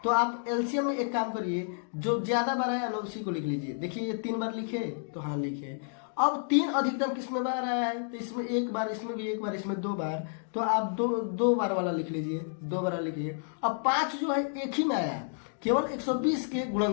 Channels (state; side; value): silent; right; digital silence